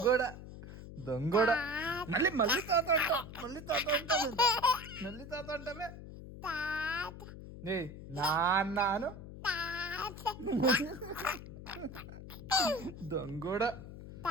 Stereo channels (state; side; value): noise; left; hum, 13 dB below the sound